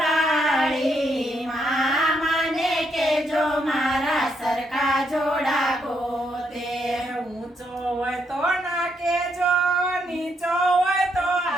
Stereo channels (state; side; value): normal; both; correlation 0.76